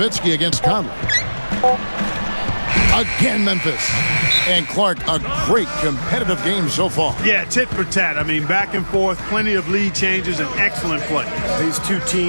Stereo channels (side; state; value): both; inverted; correlation -1.00